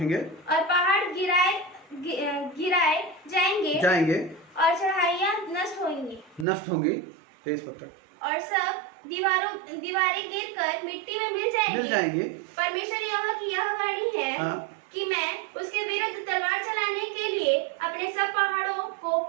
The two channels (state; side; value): drops out; left; at 6.5 s